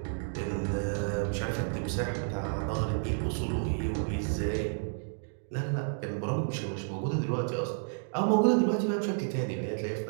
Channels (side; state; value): left; silent; digital silence